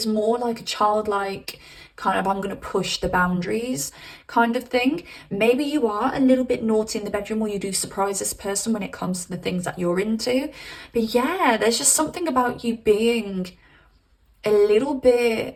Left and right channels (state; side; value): identical; both; correlation 1.00